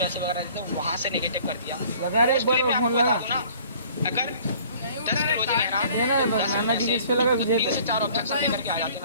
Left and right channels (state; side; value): inverted; both; correlation -0.52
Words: वगैरह देते हैं वहाँ से नेगेटिव कर दिया। लगा रे, एक बार फोन लगा ना, अगर 10 रोज लेना लगा 3 से 4 ऑब्जेक्शन लेकर के आ जाते